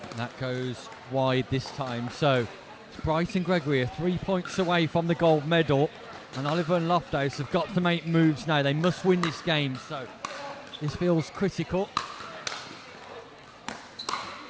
That goes wide this time. So it's Bryson Gregory are 3 points away from the gold medal, and Oliver and Loftus have got to make moves now. They must win this game, so this feels critical.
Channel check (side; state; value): both; identical; correlation 1.00